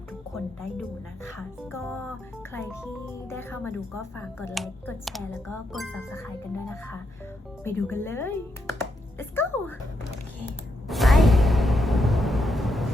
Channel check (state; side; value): normal; both; correlation 0.81